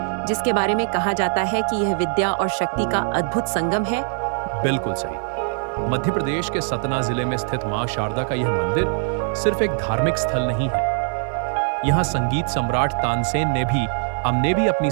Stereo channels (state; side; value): silent; left; digital silence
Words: जिसके बारे में कहा जाता है कि यह विद्या और शक्ति का अद्भुत संगम है? बिल्कुल सही। मध्य प्रदेश के सतना जिले में स्थित मां शारदा का यह मंदिर सिर्फ एक धार्मिक स्थल नहीं है। यहाँ संगीत सम्राट तानसेन ने भी अपनी